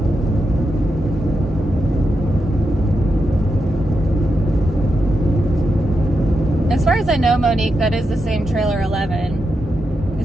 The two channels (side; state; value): both; normal; correlation 0.86